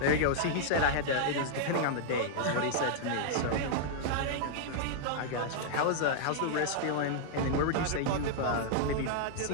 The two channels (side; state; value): both; different; correlation -0.01